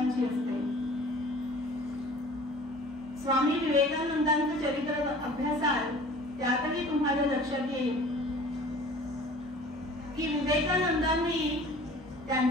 असते. स्वामी विवेकानंदांचं चरित्र अभ्यासाल त्यातही तुम्हाला लक्षात येईल की विवेकानंदांनी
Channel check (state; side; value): normal; both; correlation 0.46